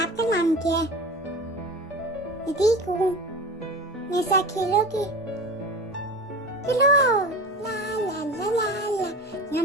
आपका नाम क्या है? मैं ठीक हूँ। मेरे साथ खेलोगे? चलो, ला ला ला ला ला,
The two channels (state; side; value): normal; both; correlation 0.33